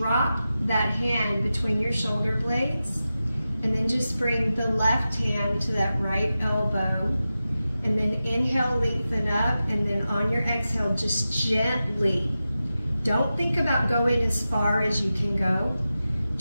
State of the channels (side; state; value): both; inverted; correlation -0.93